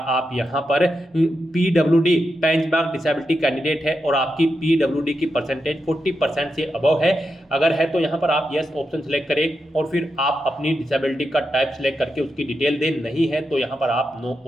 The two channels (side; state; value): both; normal; correlation 0.87